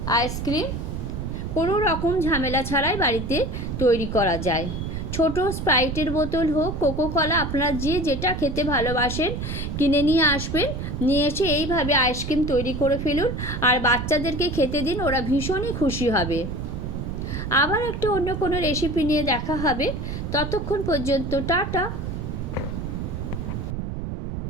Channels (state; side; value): noise; right; rumble, 5 dB below the sound